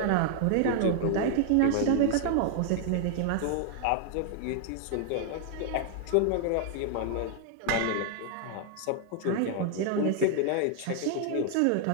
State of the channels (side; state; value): both; different; correlation 0.00